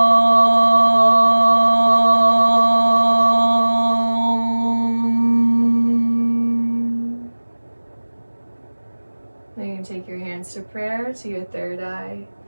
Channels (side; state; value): both; inverted; correlation -1.00